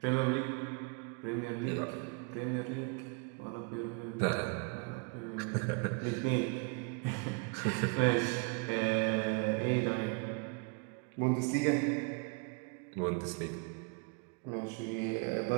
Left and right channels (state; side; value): quieter; left; 32.4 dB